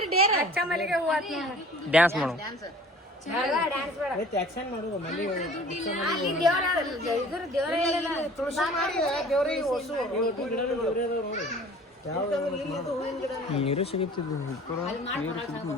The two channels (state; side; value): normal; both; correlation 0.48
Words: ಡೇರ್ ಅಚ್ಚ ಮಲ್ಲಿಗೆ ಹೂವು ಡ್ಯಾನ್ಸ್ ಮಾಡು ಡ್ಯಾನ್ಸ್ ಬೇಡ. ಆಕ್ಷನ್ ಮಾಡೋದು ಮಲ್ಲಿ ಅಲ್ಲಿ ದೇವರ ಇದ್ರ ದೇವರ ಹೇಳಿಲ್ಲ ತುಳಸಿ ಮಾಡಿ ದೇವ್ರಿಗೆ ಹೊಸು ನೀರು ಸಿಗುತ್ತಿದ್ದು